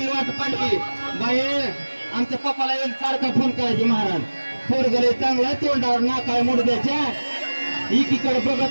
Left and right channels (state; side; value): inverted; both; correlation -1.00